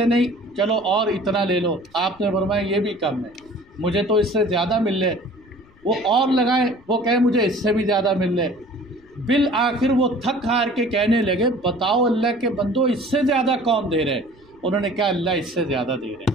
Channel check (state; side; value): noise; left; rumble, 29 dB below the sound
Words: نہیں چلو اور اتنا لے لو، آپ نے فرمایا یہ بھی کم ہے، مجھے تو اس سے زیادہ مل لے، وہ اور لگائے، وہ کہے مجھے اس سے بھی زیادہ مل لے، بالآخر وہ تھک ہار کے کہنے لگے بتاؤ اللہ کے بندو اس سے زیادہ کون دے رہے؟ انہوں نے کہا اللہ اس سے زیادہ دے رہے